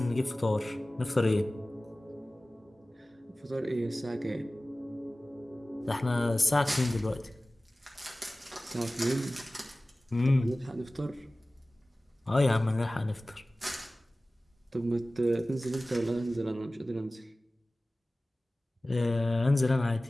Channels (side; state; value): both; normal; correlation 0.97